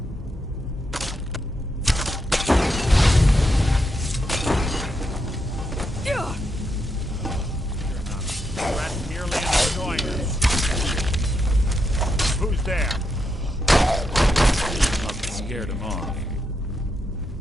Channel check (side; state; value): both; normal; correlation 0.82